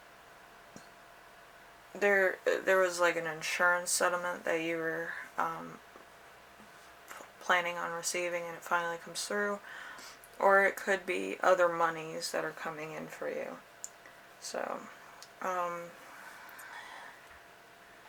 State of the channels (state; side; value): identical; both; correlation 1.00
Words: there was like an insurance settlement that you were planning on receiving and it finally comes through, or it could be other monies that are coming in for you. So